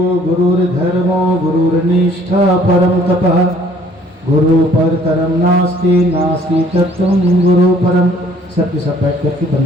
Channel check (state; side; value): normal; both; correlation 0.58